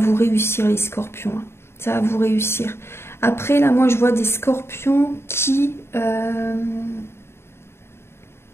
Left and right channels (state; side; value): late; right; 0.12 ms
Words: réussir, les scorpions. Ça va vous réussir. Après, là, moi, je vois des scorpions qui...